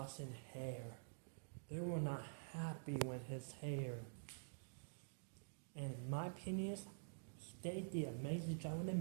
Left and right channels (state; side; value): silent; left; digital silence